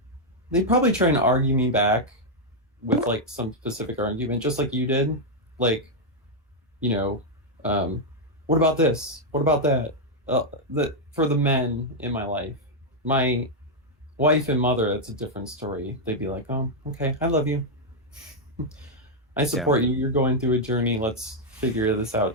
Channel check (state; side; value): normal; both; correlation -0.01